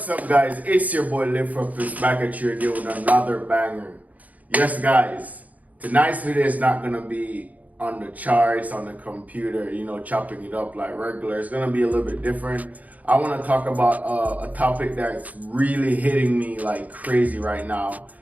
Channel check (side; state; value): left; late; 0.076 ms